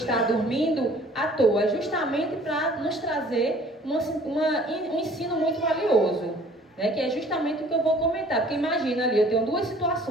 dormindo à toa, é justamente para nos trazer um ensino muito valioso, né? Que é justamente o que eu vou comentar, porque imagina ali, eu tenho duas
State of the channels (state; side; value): normal; both; correlation 0.53